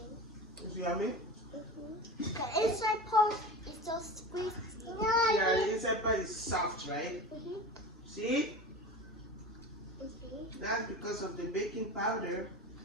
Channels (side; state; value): both; normal; correlation 0.31